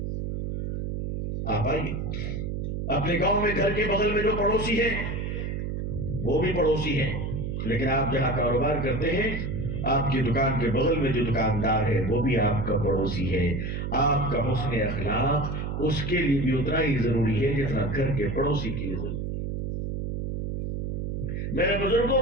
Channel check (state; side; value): noise; right; hum, 3 dB below the sound